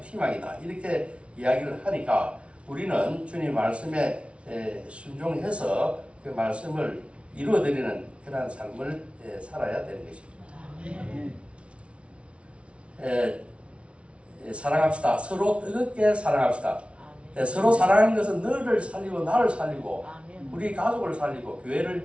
희망이다. 이렇게 이야기를 하니까 우리는 주님 말씀에 순종해서 그 말씀을 이루어드리는 그러한 삶을 살아야 되는 것입니다. 사랑합시다. 서로 뜨겁게 사랑합시다. 서로 사랑하는 것은 너를 살리고 나를 살리고 우리 가족을 살리고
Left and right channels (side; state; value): left; late; 0.061 ms